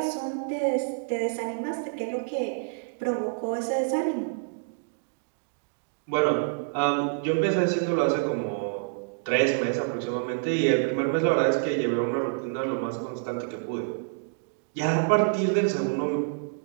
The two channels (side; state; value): left; silent; digital silence